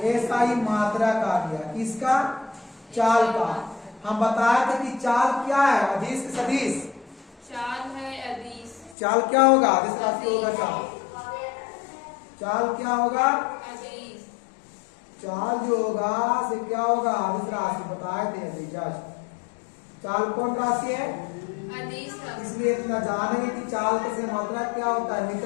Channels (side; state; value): right; drops out; at 9.0 s